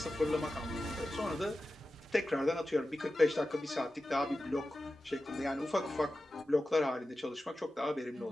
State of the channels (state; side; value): normal; both; correlation 0.93